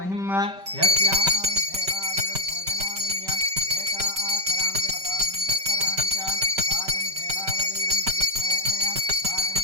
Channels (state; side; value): late; left; 5.2 ms